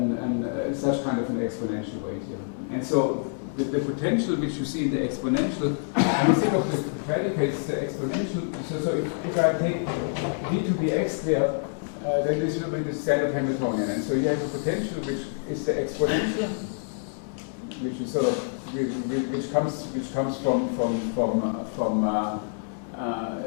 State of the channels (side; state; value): right; silent; digital silence